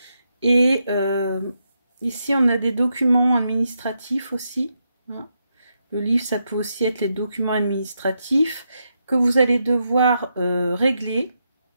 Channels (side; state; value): both; inverted; correlation -0.83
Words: Et ici on a des documents administratifs aussi, hein. Le livre, ça peut aussi être les documents administratifs que vous allez devoir régler